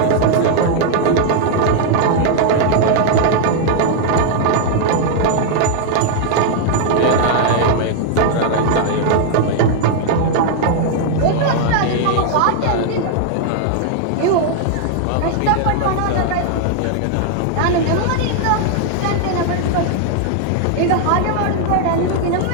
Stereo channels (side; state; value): both; different; correlation 0.00